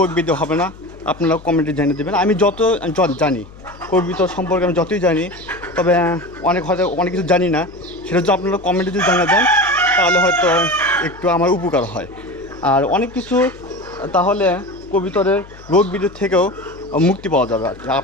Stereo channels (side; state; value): left; noise; hum, 20 dB below the sound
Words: ব্যাধি হবে না। আপনারা কমেন্টে জানিয়ে দেবেন। আমি যত জানি কবুতর সম্পর্কে আমি যতই জানি, তবে হয়তো অনেক কিছু জানি না, সেটা যদি আপনারা কমেন্টে যদি জানিয়ে দেন তাহলে হয়তো একটু আমার উপকার হয়। আর অনেক কিছু তাহলে কবুতরের রোগ ব্যাধির থেকেও মুক্তি পাওয়া যাবে আর কি।